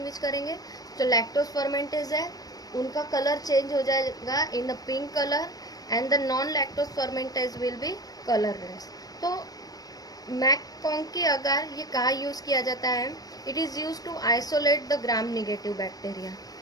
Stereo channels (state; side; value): late; right; 0.18 ms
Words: करेंगे? जो लैक्टोज फर्मेंटेज है उनका कलर चेंज हो जाएगा in the pink colour and the non lactose fermenters will be colourless. तो मैककॉन्की अगार ये कहाँ यूज़ किया जाता है? It is use to isolate the gram negative bacteria.